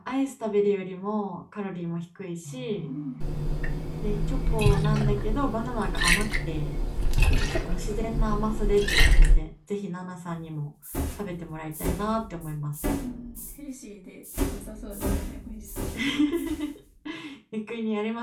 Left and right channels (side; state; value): both; identical; correlation 1.00